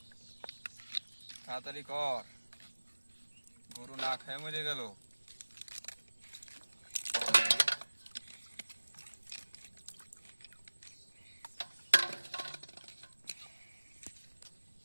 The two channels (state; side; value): inverted; both; correlation -1.00